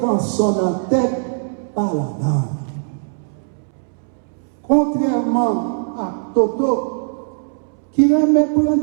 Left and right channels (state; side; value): silent; left; 66 dB below the other